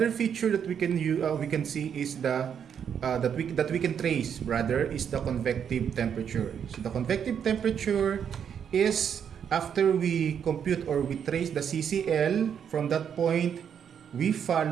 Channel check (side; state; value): left; quieter; 8.0 dB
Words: feature that we can see is the that we can trace rather is the convective temperature. So the convective temperature is after we compute or we trace the CCL, from that point we